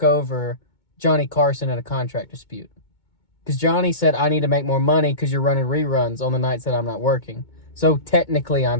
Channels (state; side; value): late; right; 2.2 ms